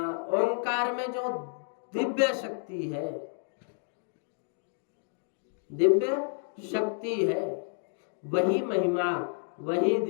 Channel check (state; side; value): silent; right; 58 dB below the other